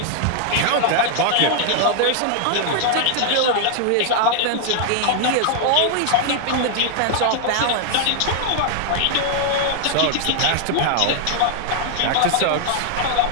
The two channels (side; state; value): both; different; correlation 0.00